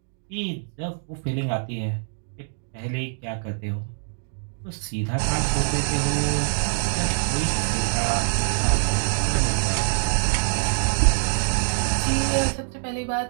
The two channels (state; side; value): silent; left; digital silence